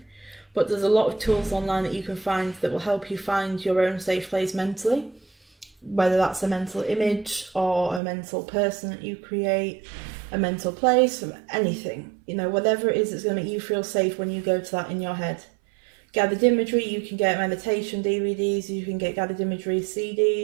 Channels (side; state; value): left; drops out; at 8.0 s